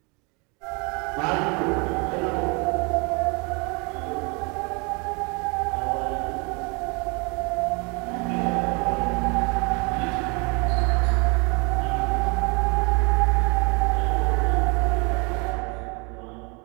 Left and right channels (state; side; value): quieter; left; 31.2 dB